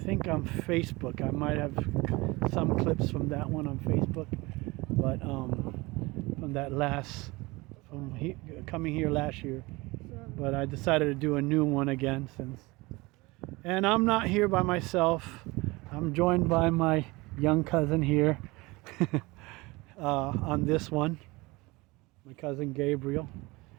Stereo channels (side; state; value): left; quieter; 23.1 dB